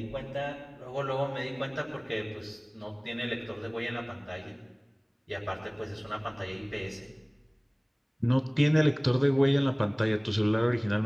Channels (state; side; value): identical; both; correlation 1.00